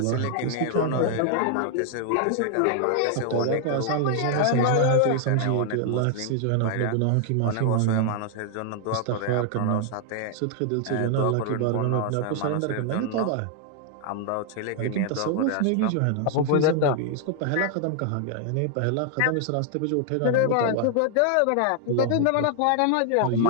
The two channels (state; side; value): different; both; correlation 0.00